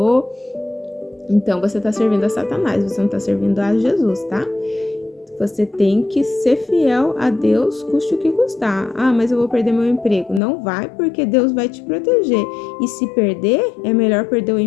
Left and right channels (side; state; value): right; drops out; at 10.4 s